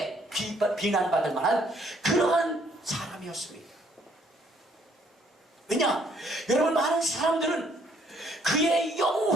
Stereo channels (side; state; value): both; normal; correlation 0.66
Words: 비난받을 만한 그러한 사람이었습니다. 왜냐? 여러분, 많은 사람들은 그의